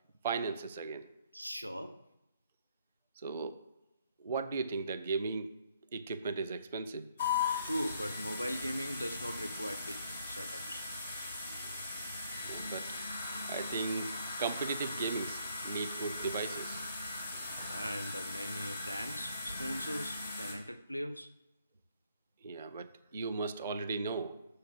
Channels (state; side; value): inverted; both; correlation -0.67